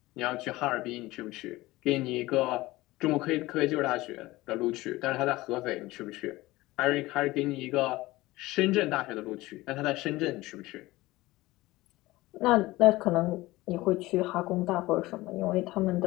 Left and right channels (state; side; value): quieter; right; 19.0 dB